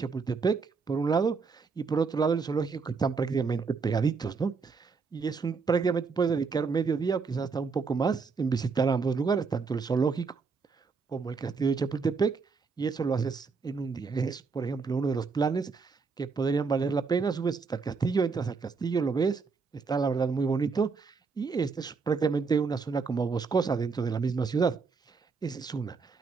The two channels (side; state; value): left; quieter; 4.9 dB